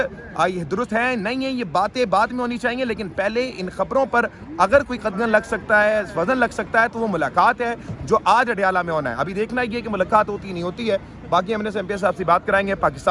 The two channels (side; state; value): both; identical; correlation 1.00